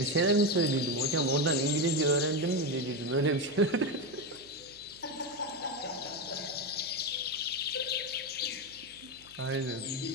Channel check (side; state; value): right; noise; hum, 26 dB below the sound